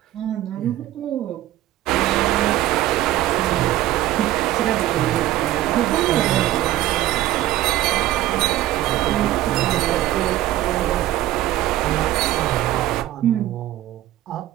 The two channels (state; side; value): quieter; left; 14.6 dB